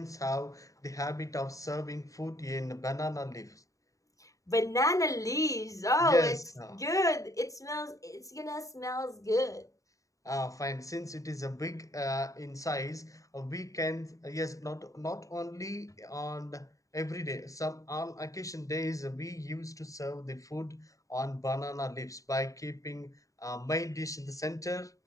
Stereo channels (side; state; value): right; late; 0.16 ms